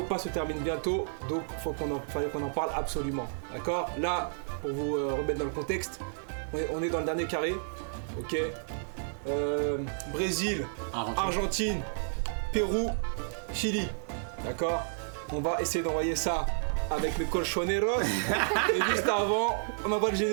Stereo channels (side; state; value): left; silent; digital silence